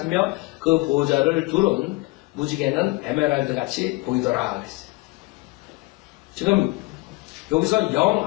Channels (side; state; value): right; quieter; 24.0 dB